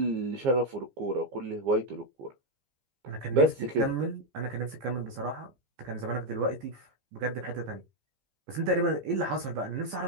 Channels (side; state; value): left; late; 15 ms